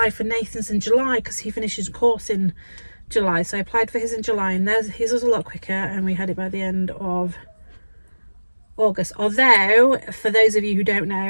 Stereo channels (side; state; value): both; inverted; correlation -1.00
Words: for Nathan's in July, because he finishes a course in July, so I applied for his in July, and his was a lot quicker, and we had it by the end of August. Although, for those of you who don't